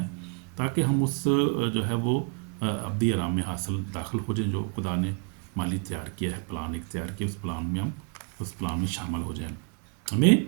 تاکہ ہم اس جو ہے وہ ابدی آرام میں داخل ہو جائیں جو خدا نے مالی تیار کیا ہے، پلان اختیار کیا. اس پلان میں ہم اس پلان میں شامل ہو جائیں. ہمیں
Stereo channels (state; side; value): quieter; left; 36.9 dB